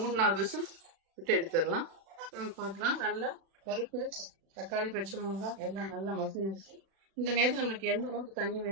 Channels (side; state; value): left; late; 36 ms